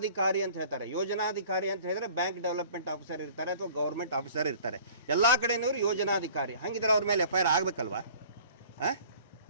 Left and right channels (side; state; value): both; inverted; correlation -0.49